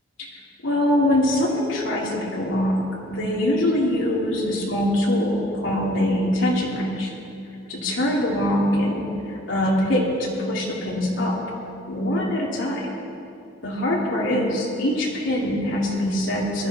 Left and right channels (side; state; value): both; normal; correlation 0.54